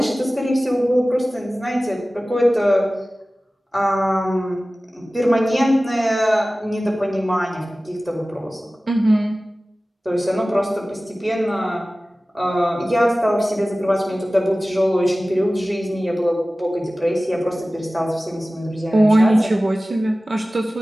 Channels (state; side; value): normal; both; correlation 0.97